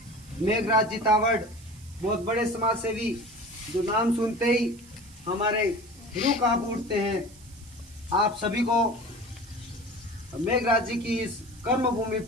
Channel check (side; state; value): right; noise; hiss, 23 dB below the sound